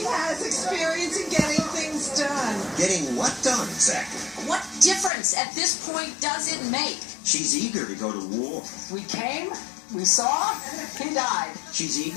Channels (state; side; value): drops out; right; at 5.1 s